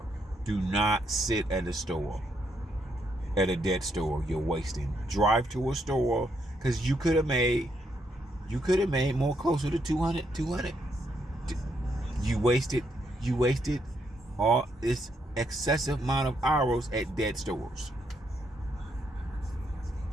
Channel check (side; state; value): both; normal; correlation 0.76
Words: store, at a dead store. You're wasting. Drive to a store, because you could have made more, closer to 200. You wasted all this excessive amount of hours at dead stores.